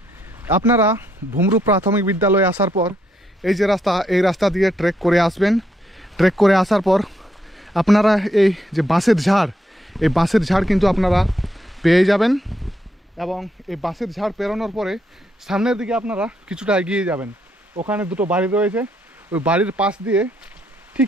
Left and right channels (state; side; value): normal; both; correlation 0.76